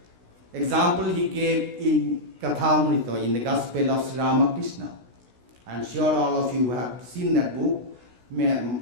example he gave in Kathamrita, in the Gospel of Sri Ramakrishna. I'm sure all of you have seen that book.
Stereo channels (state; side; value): late; left; 16 ms